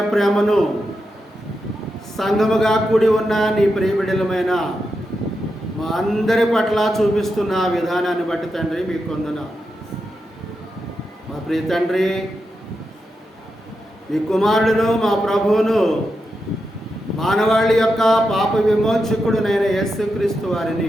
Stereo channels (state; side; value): normal; both; correlation 0.87